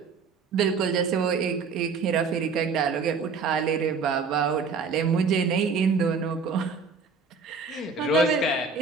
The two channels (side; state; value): left; quieter; 4.9 dB